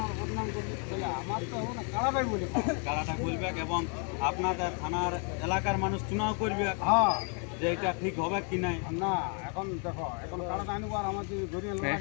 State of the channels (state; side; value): quieter; right; 39.7 dB